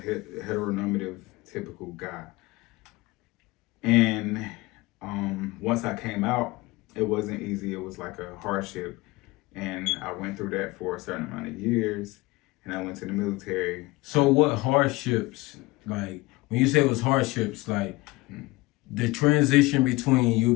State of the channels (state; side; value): quieter; right; 21.7 dB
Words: typical guy. And once I came out, it wasn't easy. It was like a hardship. And I went through that for a certain amount of years. And I went to the military. So what hardships, like, when you say it was hardships, like the transition between